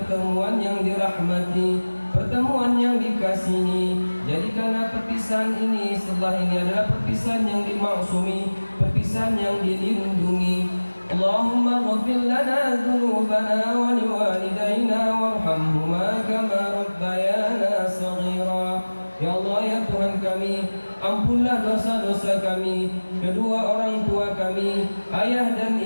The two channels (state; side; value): inverted; both; correlation -1.00